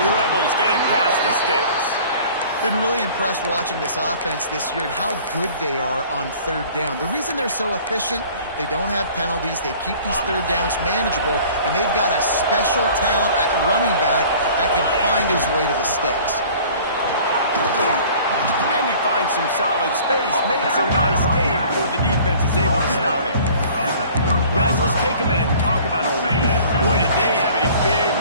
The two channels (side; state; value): both; inverted; correlation -0.49